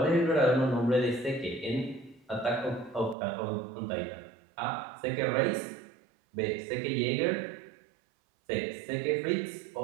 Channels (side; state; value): left; drops out; at 3.2 s